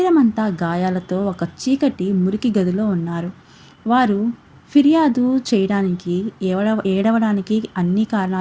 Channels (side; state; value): both; identical; correlation 1.00